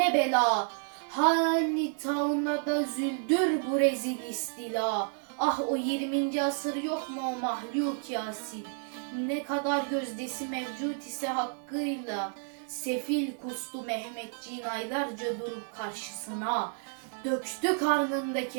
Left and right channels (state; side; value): silent; left; 57 dB below the other